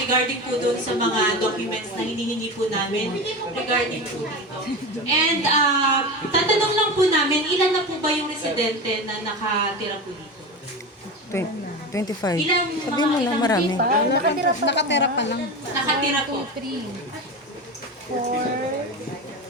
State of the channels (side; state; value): both; normal; correlation 0.24